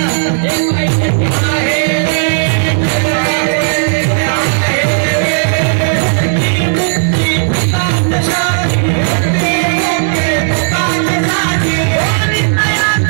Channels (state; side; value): silent; left; digital silence